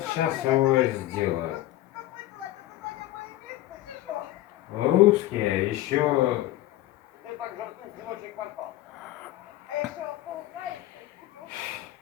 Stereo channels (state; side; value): quieter; right; 15.4 dB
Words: сейчас его сделаю. Русские еще